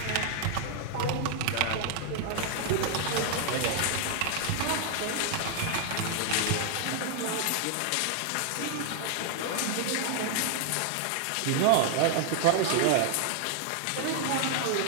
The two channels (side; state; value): both; different; correlation -0.01